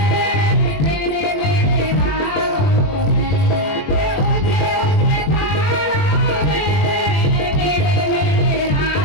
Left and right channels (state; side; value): late; right; 21 ms